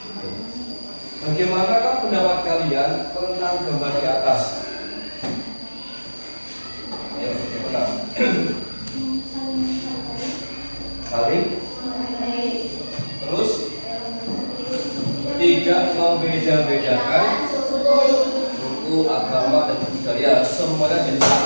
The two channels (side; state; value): both; inverted; correlation -1.00